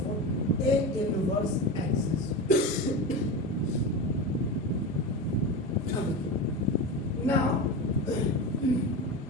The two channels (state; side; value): normal; both; correlation 0.23